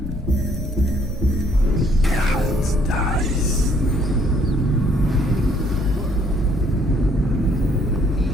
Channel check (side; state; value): both; normal; correlation 0.65